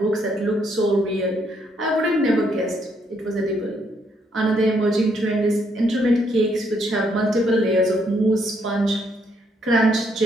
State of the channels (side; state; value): both; normal; correlation 0.72